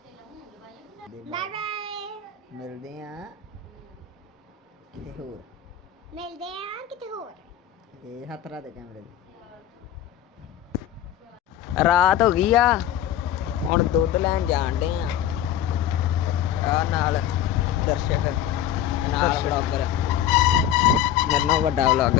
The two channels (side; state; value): right; quieter; 10.7 dB